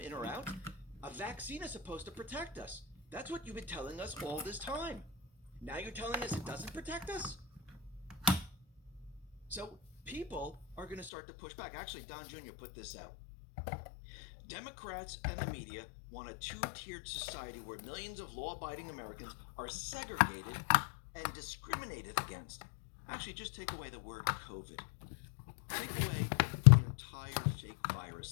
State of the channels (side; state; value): right; drops out; at 11.1 s